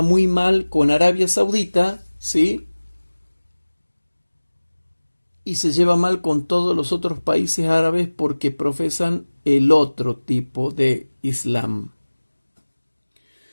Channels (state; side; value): inverted; both; correlation -1.00